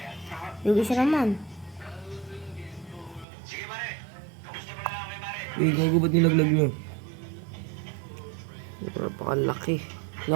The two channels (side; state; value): left; drops out; at 3.2 s